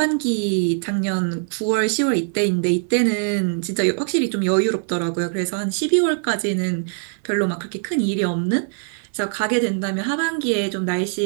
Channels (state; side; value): silent; left; 64 dB below the other